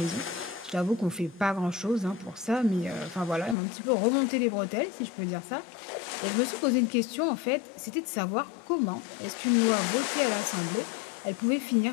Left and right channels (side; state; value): right; drops out; at 3.6 s